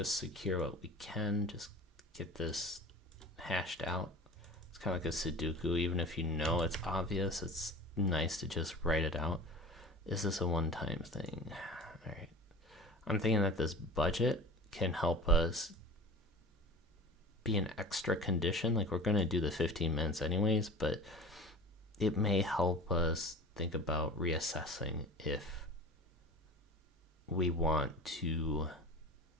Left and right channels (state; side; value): normal; both; correlation 0.37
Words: secure what we can, just get this hashed out. It's kind of like a Sudoku. Even if you know it's obvious, it's nice to just write it out. Is this a one-time thing? All right. I'm thinking that this budget can help us be an extra condition. Like, we're going to do the 15 minutes anyways, but it may help us think about reassessing if we want to